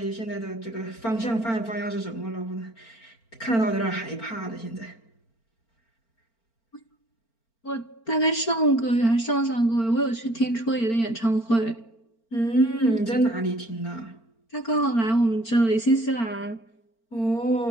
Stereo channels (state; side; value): late; right; 4.4 ms